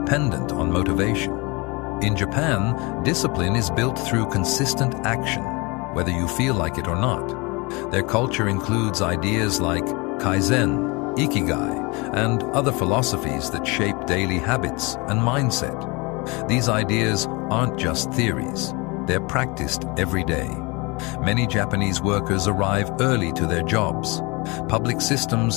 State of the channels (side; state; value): right; quieter; 27.0 dB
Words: on motivation. In Japan, discipline is built through consistent action, whether you feel like it or not. Their culture includes ideas like Kaizen, Ikigai, and other philosophies that shape daily habits and mindset. These ideas aren't just theories, they're practiced every day. Many Japanese workers arrive early to their jobs. Public